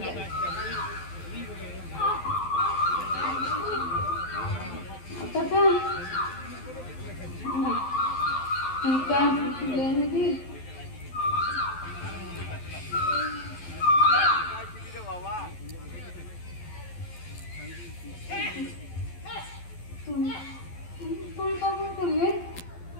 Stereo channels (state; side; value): late; right; 12 ms